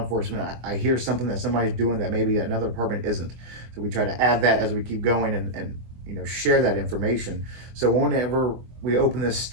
I hear something that somebody's doing that maybe another department isn't. So we try to add that as we keep going and share that information. So whenever we open this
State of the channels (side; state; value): left; late; 24 ms